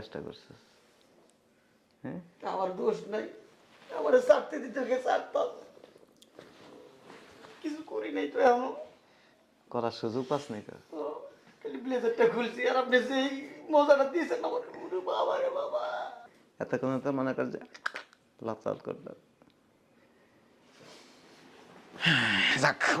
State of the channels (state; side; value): identical; both; correlation 1.00